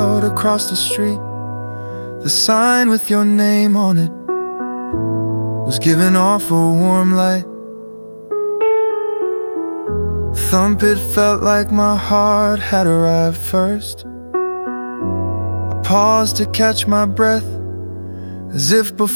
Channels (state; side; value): inverted; both; correlation -1.00